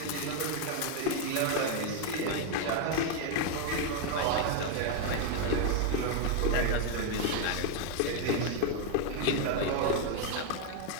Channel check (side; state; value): both; different; correlation 0.01